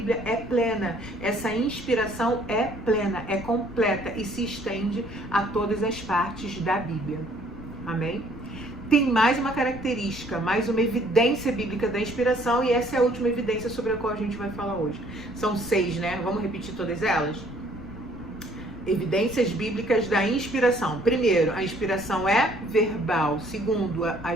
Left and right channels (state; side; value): noise; left; rumble, 16 dB below the sound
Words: é plena. Essa inspiração é plena, é completa e se estende a todas as partes da Bíblia. Amém? Tem mais uma característica, mais uma evidência bíblica da inspiração, e essa é a última evidência sobre a qual a gente vai falar hoje. São 6, né? Vamos repetir todas elas? Evidências bíblicas da inspiração. Primeiro, a inspiração é verbal. Segundo, a